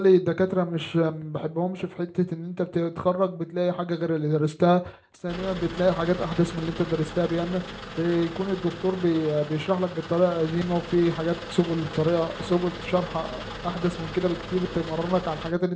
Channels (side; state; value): both; identical; correlation 1.00